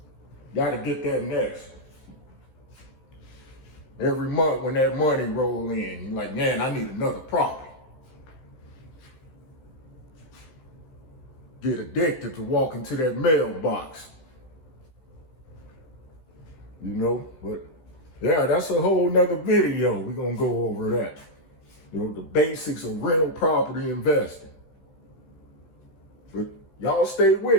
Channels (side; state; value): right; late; 15 ms